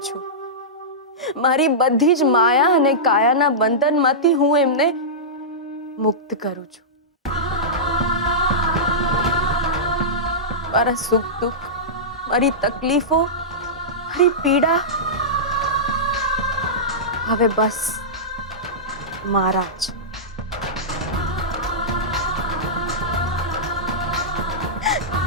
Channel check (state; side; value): normal; both; correlation -0.15